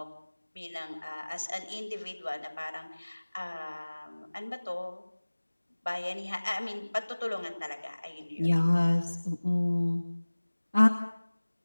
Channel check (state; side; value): inverted; both; correlation -1.00